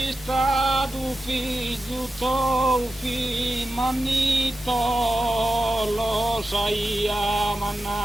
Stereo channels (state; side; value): normal; both; correlation 0.92